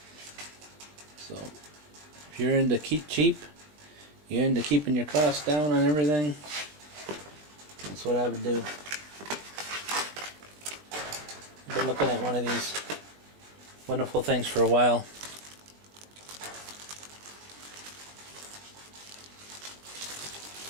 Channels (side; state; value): left; late; 20 ms